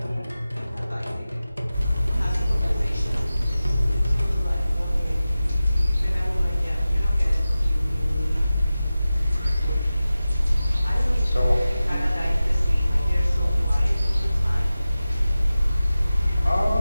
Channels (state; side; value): inverted; both; correlation -0.95